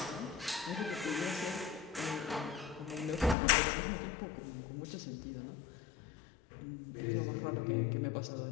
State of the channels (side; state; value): right; drops out; at 3.4 s